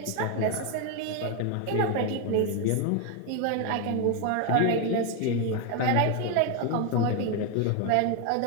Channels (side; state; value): both; different; correlation 0.01